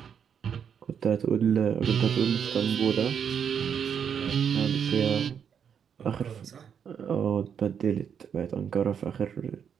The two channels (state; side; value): quieter; left; 7.7 dB